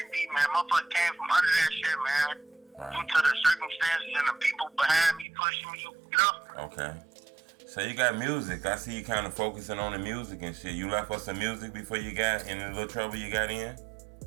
be, man. Motherfucker came from under that shit, man. Right. Due to the circumstances and the people behind me pushing me, you know? Okay. So you got music. I see you kind of focusing on the music and shit. You left us some music before you got in the little trouble you got in?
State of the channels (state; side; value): drops out; left; at 5.2 s